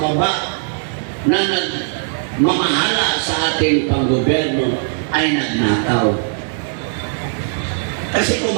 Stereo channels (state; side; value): silent; left; 67 dB below the other